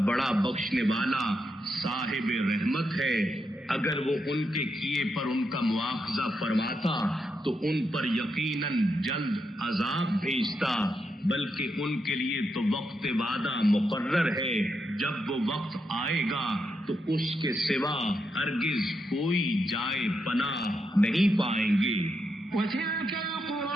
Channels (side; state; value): both; normal; correlation 0.83